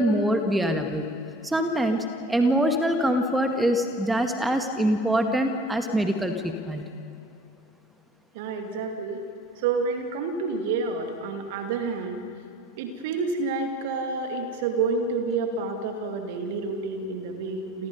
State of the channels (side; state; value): both; normal; correlation 0.49